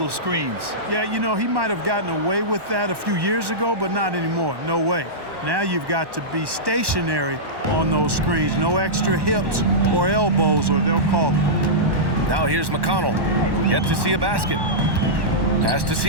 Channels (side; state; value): left; late; 1.1 ms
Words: screens. Yeah, you know, he might have gotten away with that a few years ago, but not anymore. No way. Now you've got to be stationary on those screens. No extra hips or elbows, or they'll call it. Now here's McConnell. Yet to see a basket. Pass to